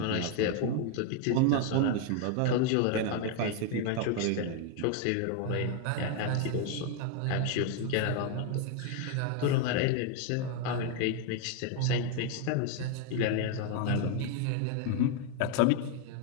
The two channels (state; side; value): different; both; correlation 0.01